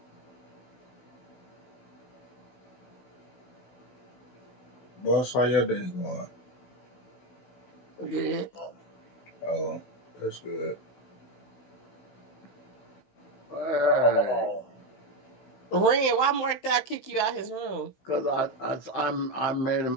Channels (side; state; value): right; late; 16 ms